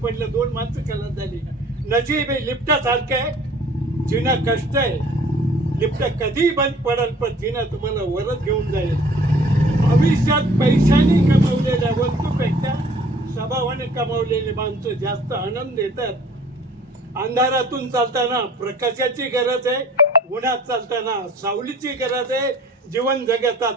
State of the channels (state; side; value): normal; both; correlation 0.52